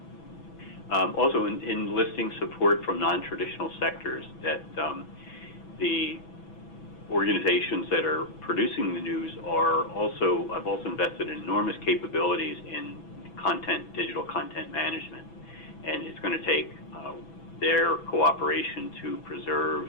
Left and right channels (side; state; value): right; late; 6.1 ms